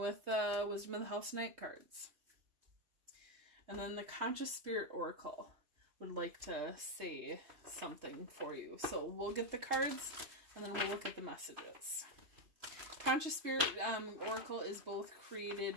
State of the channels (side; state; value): left; late; 3.2 ms